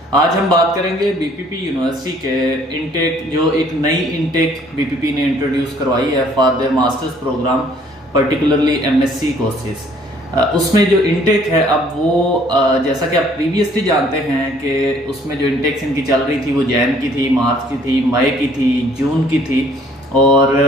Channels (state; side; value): normal; both; correlation 0.59